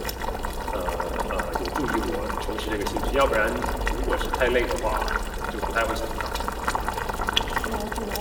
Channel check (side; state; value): both; identical; correlation 1.00